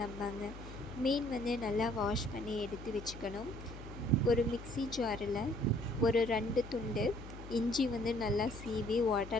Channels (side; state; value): left; noise; hum, 13 dB below the sound